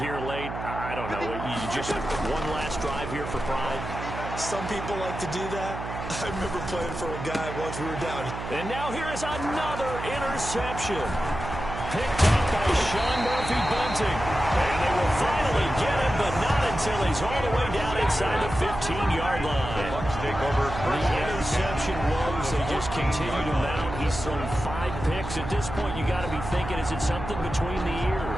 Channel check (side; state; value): right; noise; hum, 8 dB below the sound